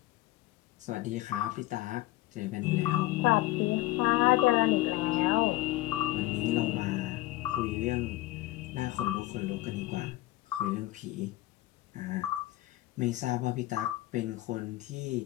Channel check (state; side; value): quieter; right; 17.7 dB